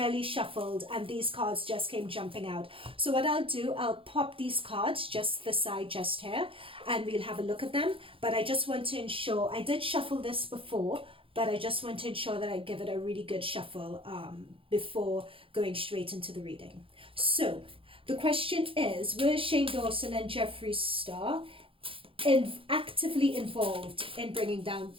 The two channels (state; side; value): late; left; 0.26 ms